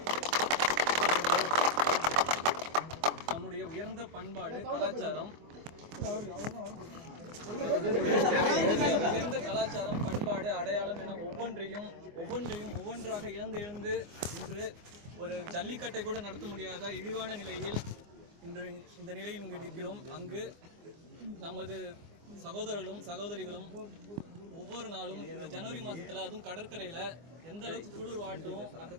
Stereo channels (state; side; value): late; left; 24 ms